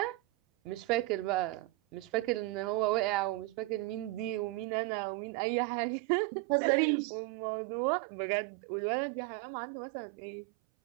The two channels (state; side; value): drops out; left; at 4.7 s